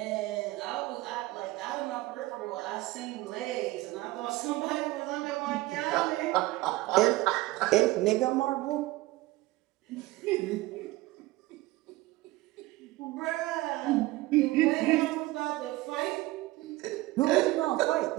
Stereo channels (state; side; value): quieter; left; 19.1 dB